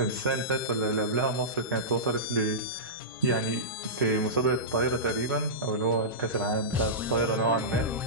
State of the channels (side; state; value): both; normal; correlation -0.17